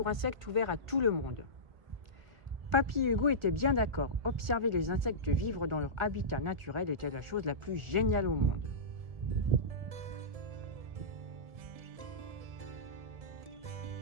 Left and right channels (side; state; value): left; late; 1.4 ms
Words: insectes ouvert à tout le monde. Papy et Hugo étaient bien d'accord. Observer les insectes vivre dans leur habitat naturel était la chose la plus géniale au monde.